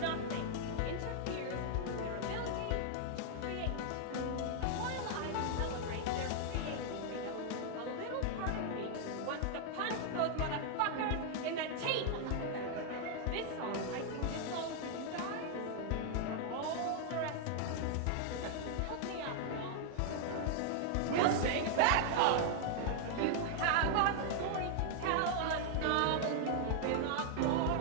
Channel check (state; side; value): different; both; correlation 0.00